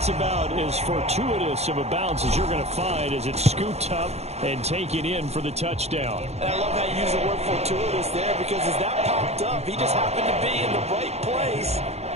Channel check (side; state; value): left; late; 0.31 ms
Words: about as fortuitous of a bounce as you're going to find as it's scooped up and taken in for the touchdown. And I love how you use the word fortuitous there, because as that popped up, he just happened to be in the right place,